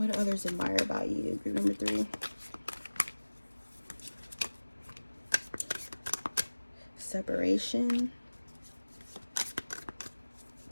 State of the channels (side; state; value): both; inverted; correlation -1.00